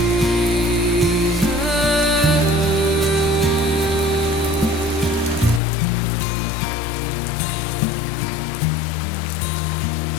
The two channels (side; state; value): right; drops out; at 5.6 s